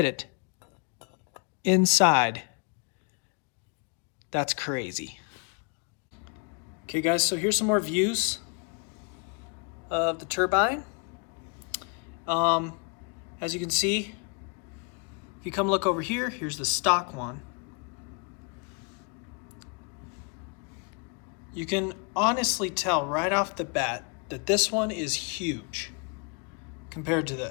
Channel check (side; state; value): right; quieter; 35.7 dB